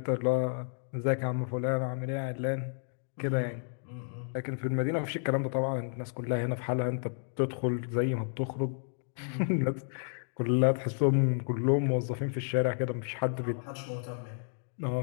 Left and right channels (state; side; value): silent; right; digital silence